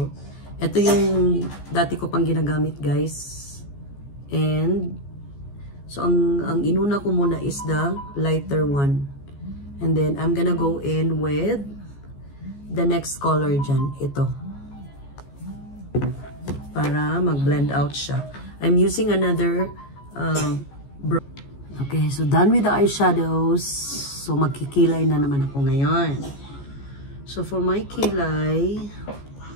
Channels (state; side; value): late; right; 14 ms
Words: Ito yung dati ko pang ginagamit, guys. And, so, ang inuna ko muna is the lighter one. And then, I'm gonna go in with the next color dyan. Ito. Para mag-blend out siya. I'm using another okay, so done with the eyeshadows. So, magkikilay na naman ako ngayon. So, for my kilay,